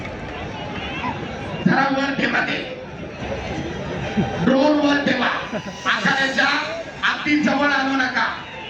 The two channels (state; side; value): identical; both; correlation 1.00